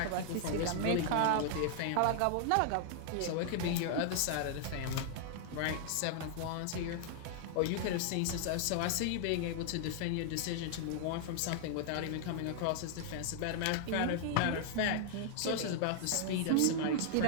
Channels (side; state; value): both; different; correlation 0.00